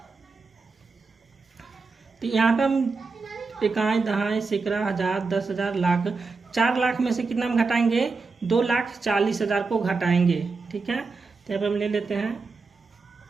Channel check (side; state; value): left; quieter; 4.3 dB